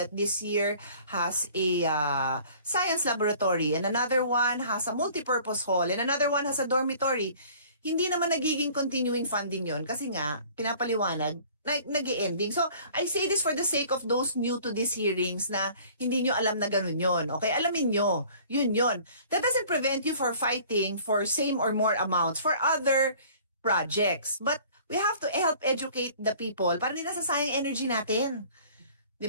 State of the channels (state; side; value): inverted; both; correlation -0.50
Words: this year has a science laboratory and another one has a multipurpose hall and another one has a dormitory, hindi naman nagiging continuing funding yon kasi nga, pinapaliwanag, nag-ending. So, I say this for the sake of those new to these hearings na hindi nyo alam na ganun yon. Okay, alamin nyo, yun. That doesn't prevent you for fighting for same or more amounts for other projects. But we have to help educate the people para hindi nasasayang energy natin.